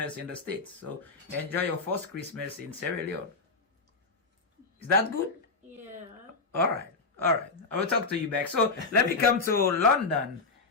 in the States. So enjoy your first Christmas in Sierra Leone. Is that good? Yeah. All right. All right. I will talk to you back. So let me come to London.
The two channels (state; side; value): quieter; right; 4.1 dB